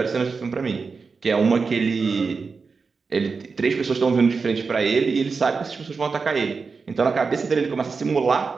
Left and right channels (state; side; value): quieter; left; 4.8 dB